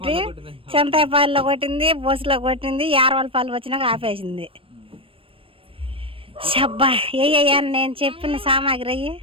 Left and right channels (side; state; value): left; late; 0.26 ms